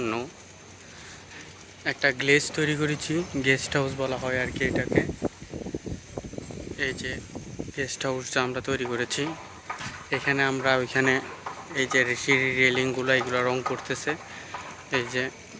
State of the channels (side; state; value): both; identical; correlation 1.00